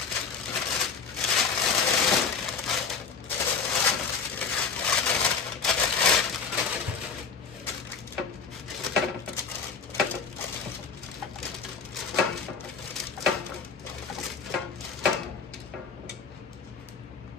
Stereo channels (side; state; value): right; quieter; 5.7 dB